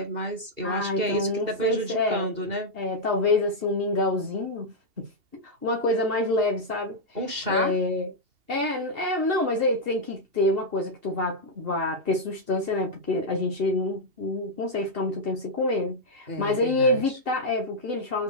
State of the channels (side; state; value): left; late; 2.8 ms